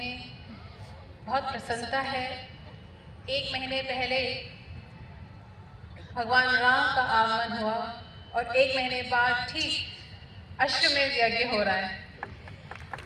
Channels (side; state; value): both; identical; correlation 1.00